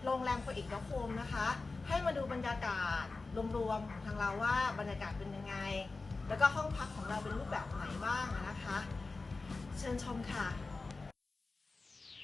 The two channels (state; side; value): quieter; right; 3.7 dB